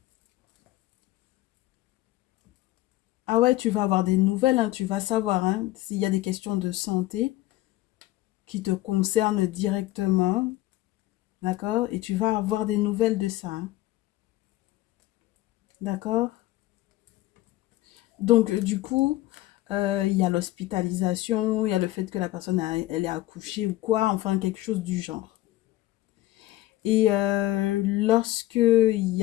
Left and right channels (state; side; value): quieter; right; 16.3 dB